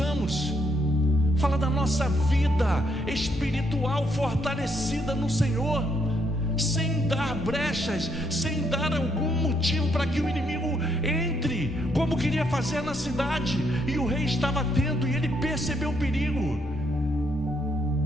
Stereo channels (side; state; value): both; normal; correlation 0.74